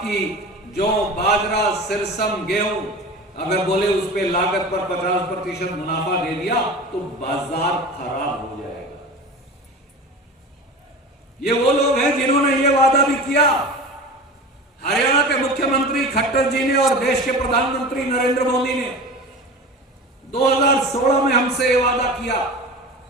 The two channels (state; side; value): normal; both; correlation 0.33